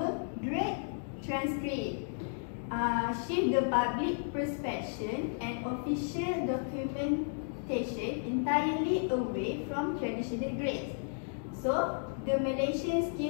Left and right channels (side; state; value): right; silent; digital silence